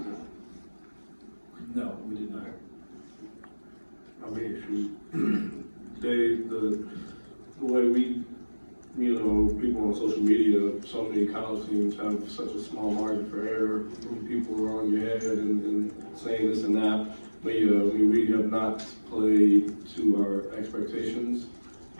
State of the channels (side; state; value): both; inverted; correlation -1.00